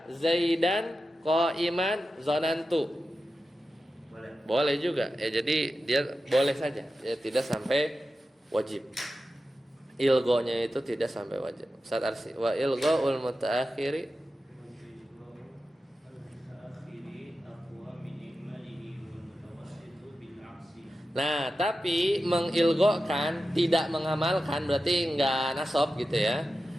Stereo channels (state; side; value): normal; both; correlation 0.92